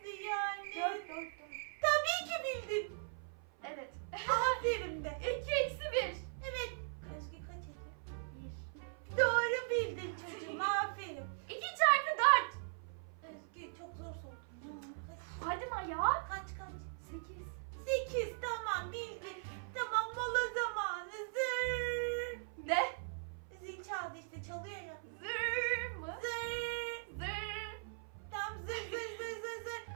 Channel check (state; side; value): silent; left; 51 dB below the other